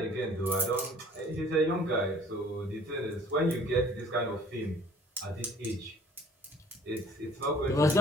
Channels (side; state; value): both; normal; correlation 0.53